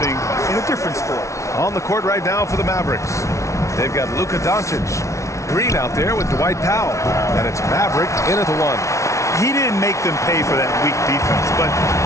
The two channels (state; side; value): late; right; 0.14 ms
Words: in a different sport. On the court right now for the Mavericks, they've got Luka Doncic. Green out there with Dwight Powell. And it's Maverick in at the one. He didn't make them pay for that weak defense, but